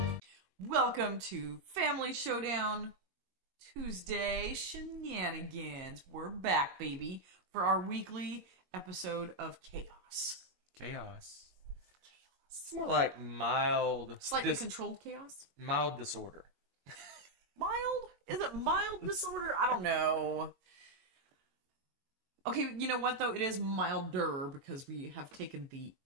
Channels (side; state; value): left; late; 22 ms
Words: Welcome to Family Showdown Tuesday Shenanigans. We're back, baby, for our weekly episode of Chaos. Chaos. It's more like mild... Slightly controlled chaos? Mild disorder. Mild? Is it mild disorder? I don't know. Okay, you know what, though? It is milder because we have taken the